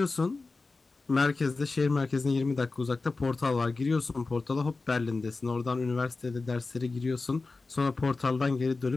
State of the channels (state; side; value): quieter; right; 3.8 dB